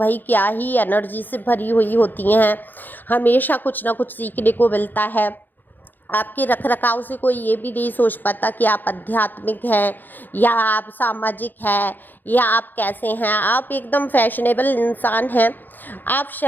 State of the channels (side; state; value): right; late; 0.088 ms